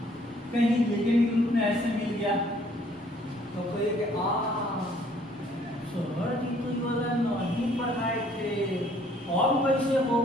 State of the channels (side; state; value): both; normal; correlation 0.61